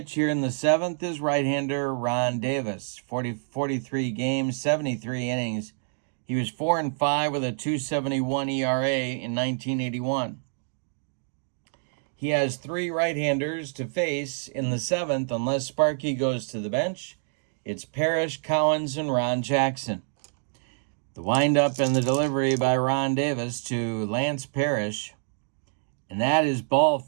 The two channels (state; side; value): silent; left; digital silence